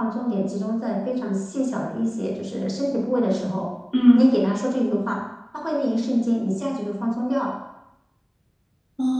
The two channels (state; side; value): identical; both; correlation 1.00